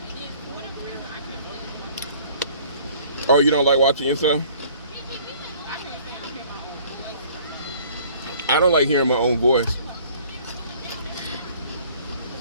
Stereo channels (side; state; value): both; inverted; correlation -0.54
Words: Oh, you don't like watching yourself? I don't like hearing my own voice.